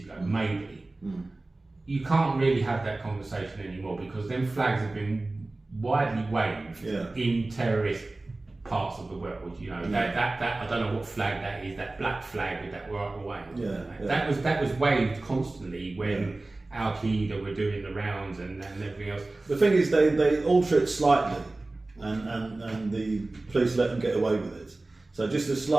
ago, maybe. You can't really have that conversation anymore because them flags have been widely waved in terrorist parts of the world. You know that I don't know what flag that is. That black flag with that right away. That was waved constantly when Al Qaeda were doing the rounds and everything else. The thing is, they alter it slightly, and the police let them get away with it. So just a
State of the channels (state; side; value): quieter; left; 3.0 dB